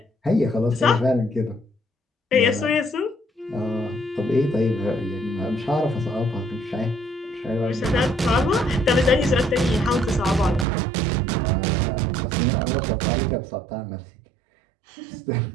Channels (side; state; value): left; drops out; at 10.7 s